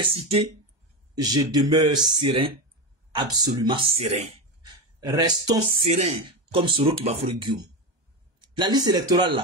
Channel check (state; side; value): late; left; 1.2 ms